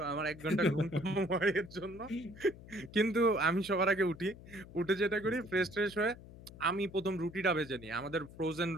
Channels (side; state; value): left; noise; hum, 17 dB below the sound